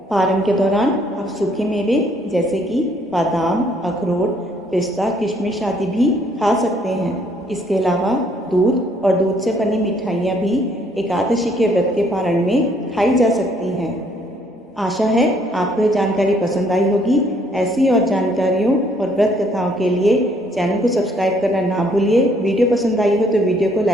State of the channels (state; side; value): normal; both; correlation 0.65